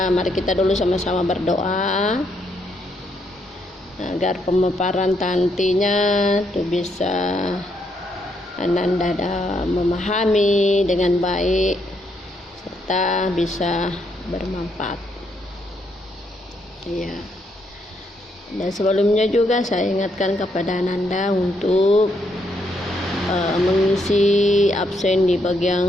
mari kita dulu sama-sama berdoa agar pemaparan nantinya itu bisa Ananda memahami dengan baik serta bisa bermanfaat. Ya. Dan sebelumnya juga saya ingatkan kepada Ananda untuk mengisi absen di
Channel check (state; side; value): normal; both; correlation 0.75